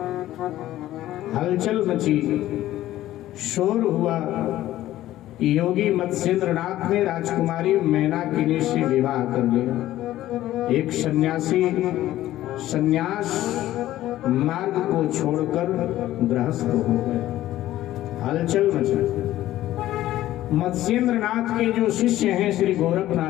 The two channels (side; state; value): right; quieter; 14.3 dB